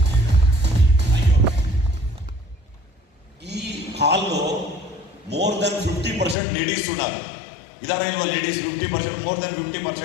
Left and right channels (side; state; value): right; drops out; at 6.4 s